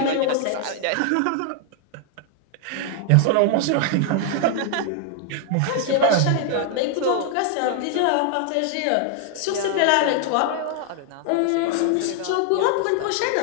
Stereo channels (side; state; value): both; different; correlation 0.00